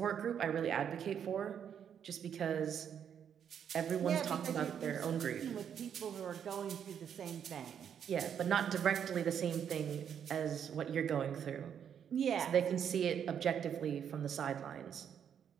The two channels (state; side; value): quieter; left; 8.4 dB